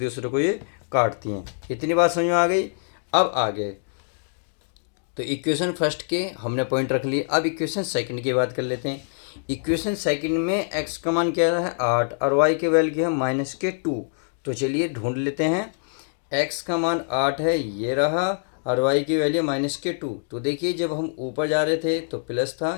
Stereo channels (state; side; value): silent; right; digital silence